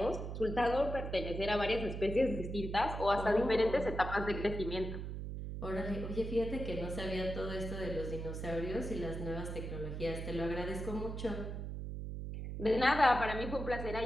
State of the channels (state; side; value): noise; right; hum, 5 dB below the sound